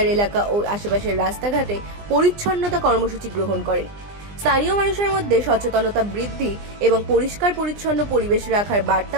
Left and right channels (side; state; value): left; late; 20 ms